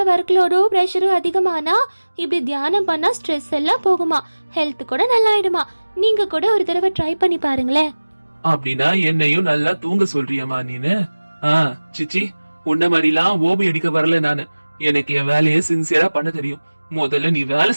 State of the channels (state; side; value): inverted; both; correlation -1.00